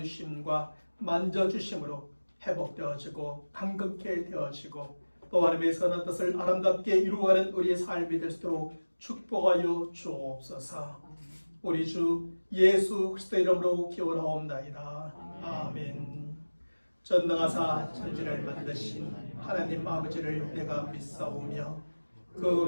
만져주심으로 회복되어지고 강건케 되어지고 또 하나님의 선한 뜻을 아름답게 이루어가는 우리의 삶이 될 수 있도록 축복하여 주옵소서. 우리 주 예수 그리스도의 이름으로 기원하옵나이다. 아멘. 전능하사 천지를 만드신 하나님 아버지를 내가 믿사오며 그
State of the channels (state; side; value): inverted; both; correlation -1.00